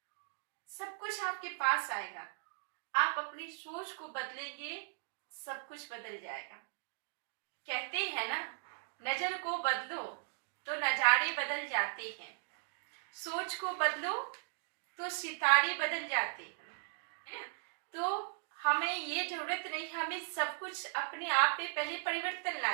सब कुछ आपके पास आएगा, आप अपनी सोच को बदलेंगे, सब कुछ बदल जाएगा। कहते हैं ना, नजर को बदलो तो नजारे बदल जाते हैं, सोच को बदलो तो सितारे बदल जाते हैं। तो हमें ये जरूरत नहीं, हमें सब कुछ अपने आप पे पहले परिवर्तन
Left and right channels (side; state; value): left; silent; digital silence